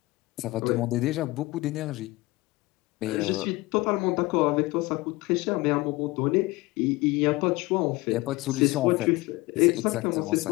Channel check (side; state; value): right; quieter; 21.3 dB